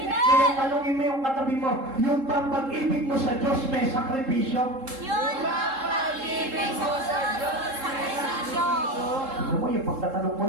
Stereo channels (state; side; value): late; left; 3.7 ms